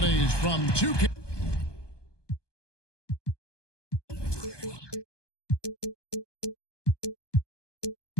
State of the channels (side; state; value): right; late; 1.2 ms